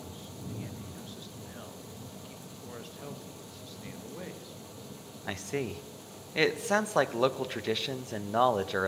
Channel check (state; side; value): identical; both; correlation 1.00